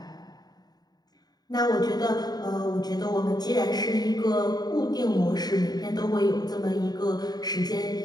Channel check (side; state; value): right; late; 0.19 ms